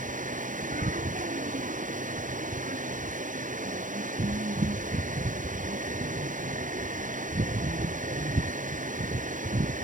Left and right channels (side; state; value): left; late; 0.38 ms